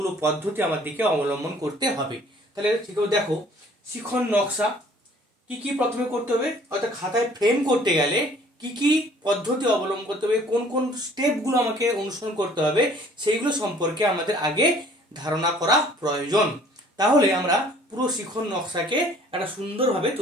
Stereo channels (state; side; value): normal; both; correlation 0.55